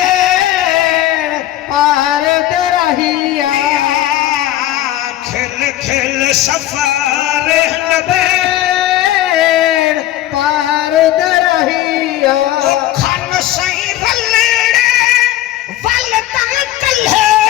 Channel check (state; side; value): quieter; right; 14.2 dB